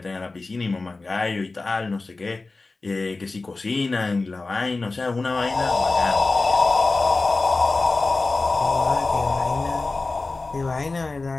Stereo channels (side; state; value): right; quieter; 3.5 dB